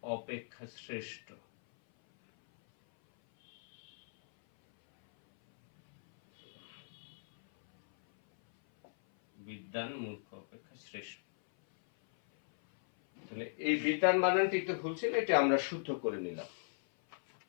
অপেক্ষা শ্রেষ্ঠ। বিদ্বান মূর্খ অপেক্ষা শ্রেষ্ঠ। তো তাহলে এই বিতান বানানটি একটু ভুল ছিল, এটা আমরা শুদ্ধ করে নিলাম।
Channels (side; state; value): right; silent; 53 dB below the other